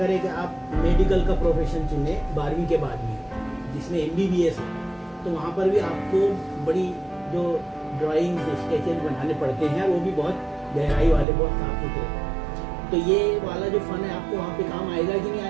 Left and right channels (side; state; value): left; drops out; at 11.2 s